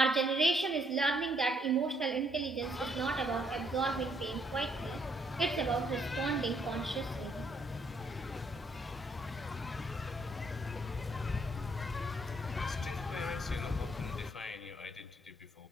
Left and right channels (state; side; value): normal; both; correlation 0.70